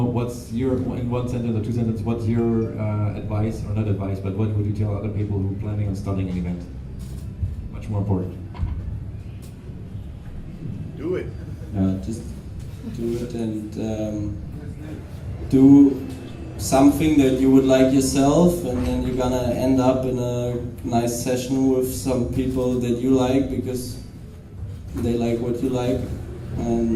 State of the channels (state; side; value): identical; both; correlation 1.00